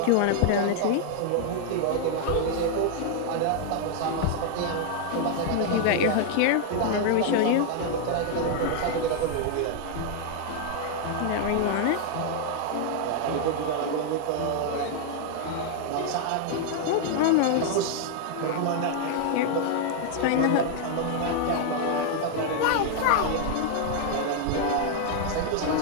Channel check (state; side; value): different; both; correlation 0.00